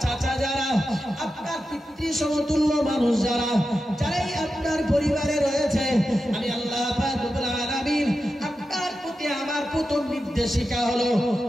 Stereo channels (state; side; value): normal; both; correlation 0.90